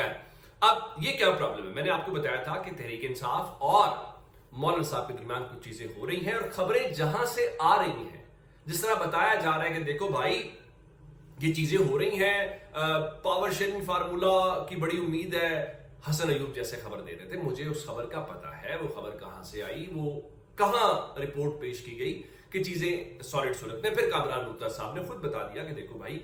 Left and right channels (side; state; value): both; identical; correlation 1.00